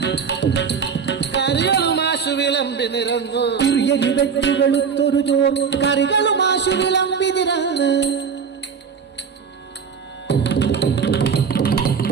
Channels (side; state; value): left; quieter; 6.3 dB